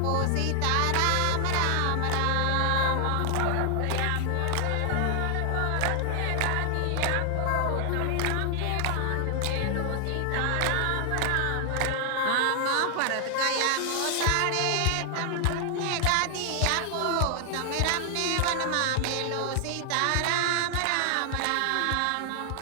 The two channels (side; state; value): both; different; correlation 0.00